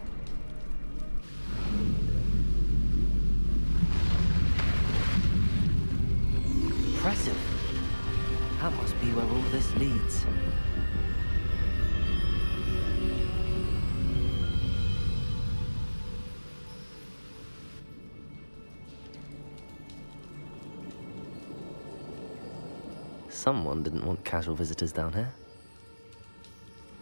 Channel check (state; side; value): inverted; both; correlation -1.00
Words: Impressive. That must be where all this leads. Someone didn't want casual visitors down here.